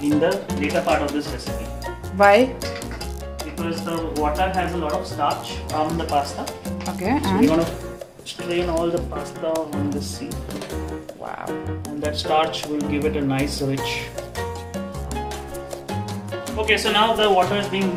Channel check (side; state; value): both; identical; correlation 1.00